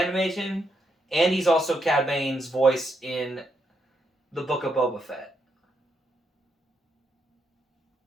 and he's also Cad Bane's voice in the Book of Boba Fett.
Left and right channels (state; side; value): normal; both; correlation 0.79